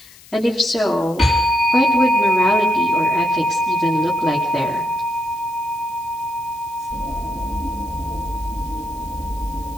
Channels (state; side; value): noise; left; hiss, 22 dB below the sound